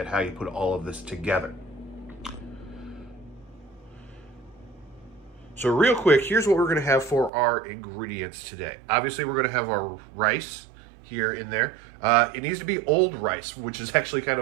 how you put all of this together. So real quick, here's what we're going to have for our ingredients today. Obviously, we're going to have our rice here in there. It needs to be old rice, which is actually kind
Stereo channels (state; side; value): drops out; left; at 7.3 s